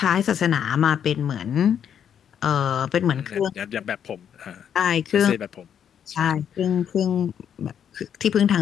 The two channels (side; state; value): right; quieter; 8.6 dB